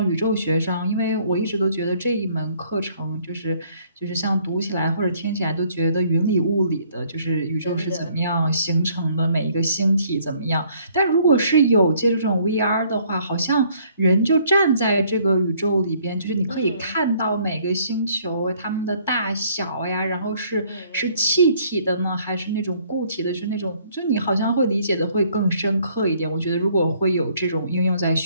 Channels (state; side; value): inverted; both; correlation -0.63